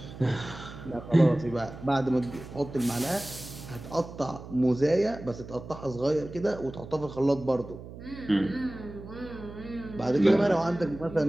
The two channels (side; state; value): right; noise; hum, 14 dB below the sound